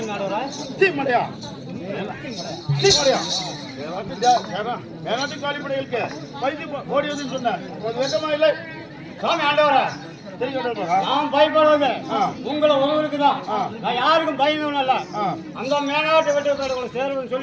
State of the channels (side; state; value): both; identical; correlation 1.00